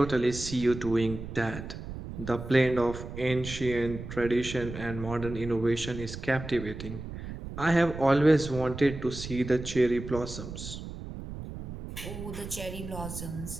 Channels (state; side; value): noise; right; rumble, 9 dB below the sound